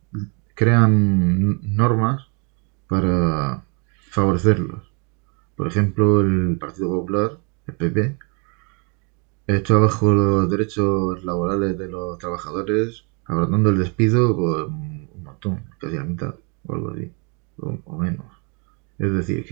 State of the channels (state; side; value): quieter; left; 34.8 dB